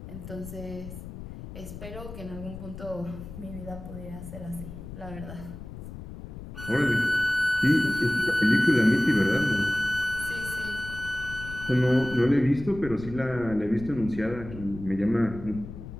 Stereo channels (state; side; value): noise; left; rumble, 12 dB below the sound